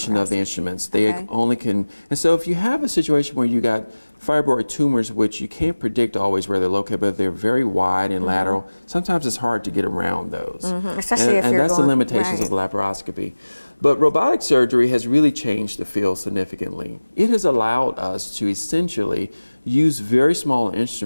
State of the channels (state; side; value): inverted; both; correlation -1.00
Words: of the instruments. They only can, and so if you have a situation where you got fibroid tumors, which you can't predict always where they're located, but they're very wide and lateral, sometimes it's hard to get around those. And that's the limitations of laparoscopy. But robotic surgery has really changed the field significantly. It has allowed us to essentially use very small